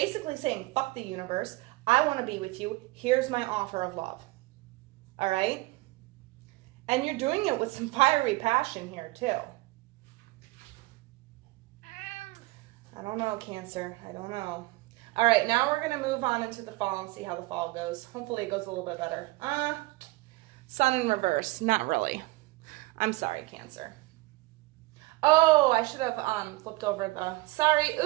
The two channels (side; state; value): left; quieter; 21.6 dB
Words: saying, fuck the universe. I want to be with you. Here's my offer of love. All right? And you're doing it with some fiery passion here, too. I don't know, Cancer. I don't know. All right, now we're going to move on into the fall and see how the fall goes. Hopefully it goes a little bit better. Sun in reverse. Not really. I'm sorry, Cancer. Oh, I should have flipped over the... Sorry.